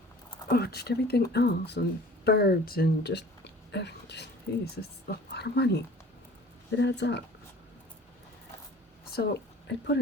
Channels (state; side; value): normal; both; correlation 0.47